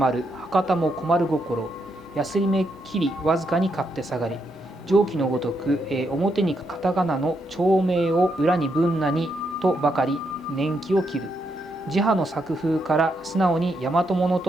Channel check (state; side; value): normal; both; correlation 0.79